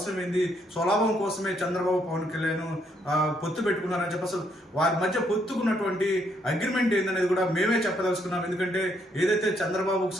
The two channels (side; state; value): both; normal; correlation 0.72